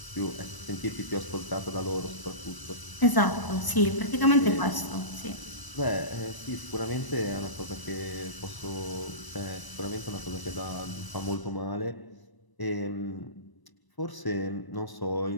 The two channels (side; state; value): right; late; 1.0 ms